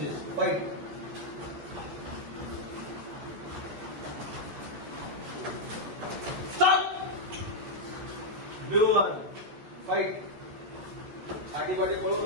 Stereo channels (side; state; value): left; late; 14 ms